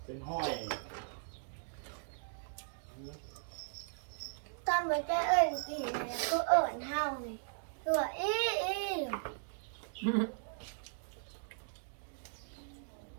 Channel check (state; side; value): silent; left; digital silence